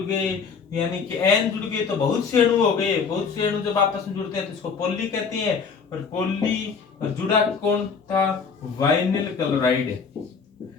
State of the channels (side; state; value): right; quieter; 5.6 dB